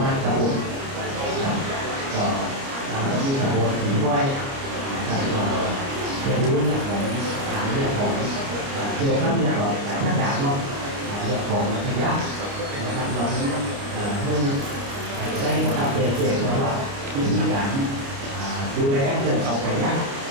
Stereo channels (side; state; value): left; late; 29 ms